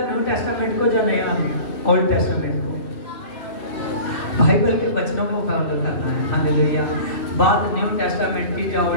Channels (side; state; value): right; late; 2.8 ms